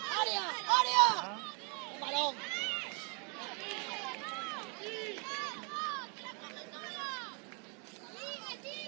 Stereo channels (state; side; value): quieter; left; 34.7 dB